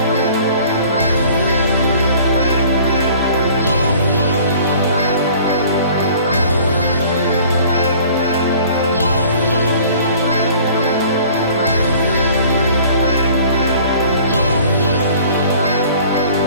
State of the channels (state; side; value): inverted; both; correlation -0.50